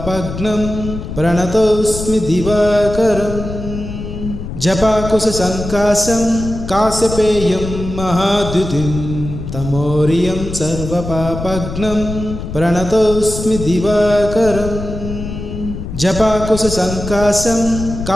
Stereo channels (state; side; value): noise; left; rumble, 8 dB below the sound